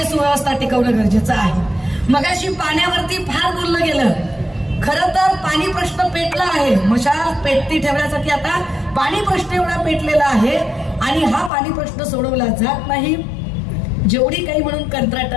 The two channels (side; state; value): right; drops out; at 11.5 s